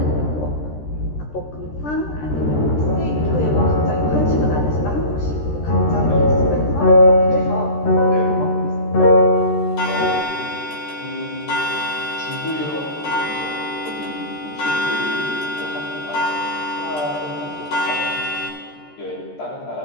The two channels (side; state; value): right; late; 13 ms